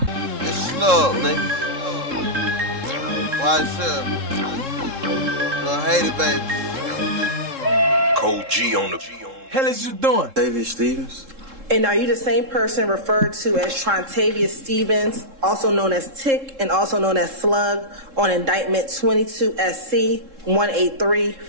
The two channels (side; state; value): left; late; 3.7 ms